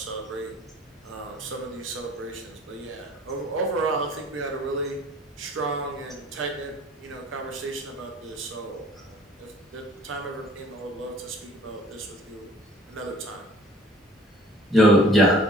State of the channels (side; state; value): both; normal; correlation 0.51